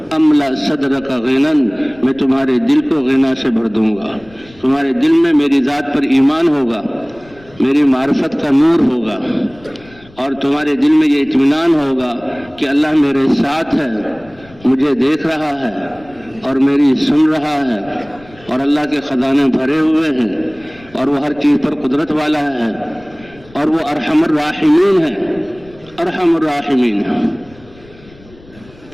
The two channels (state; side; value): noise; left; rumble, 24 dB below the sound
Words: املا صدرک غنن، میں تمہارے دل کو غنا سے بھر دوں گا. تمہارے دل میں میری ذات پر ایمان ہوگا، میری معرفت کا نور ہوگا، اور تمہارے دل میں یہ اطمینان ہوگا کہ اللہ میرے ساتھ ہے، مجھے دیکھ رہا ہے اور میری سن رہا ہے، اور اللہ کے خزانے بھرے ہوئے ہیں، اور وہ ہر چیز پر قدرت والا ہے، اور وہ ارحم الراحمین ہے، ارحم الراحمین ہے.